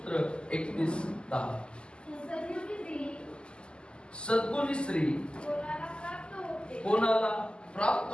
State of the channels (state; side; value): late; right; 0.050 ms